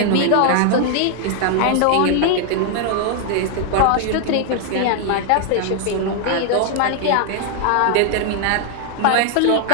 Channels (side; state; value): both; different; correlation 0.00